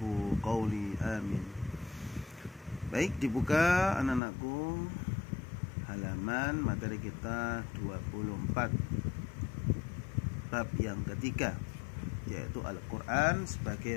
qawli. Amin. Baik, dibuka anak-anakku halaman materi kita 24, bab yang ketiga, yaitu Al-Quran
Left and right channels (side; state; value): right; drops out; at 4.2 s